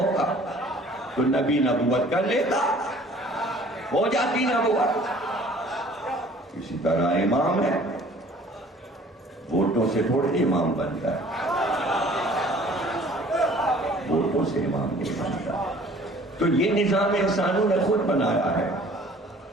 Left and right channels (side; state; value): both; normal; correlation 0.52